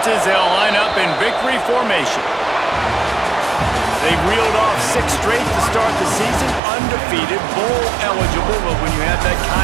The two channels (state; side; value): drops out; left; at 6.6 s